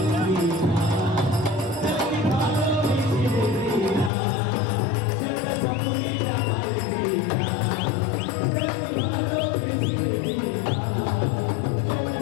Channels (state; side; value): drops out; right; at 4.1 s